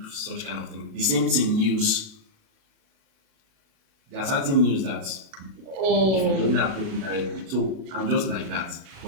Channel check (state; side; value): late; left; 36 ms